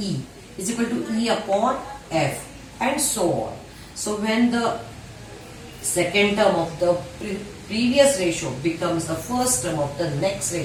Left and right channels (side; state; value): both; identical; correlation 1.00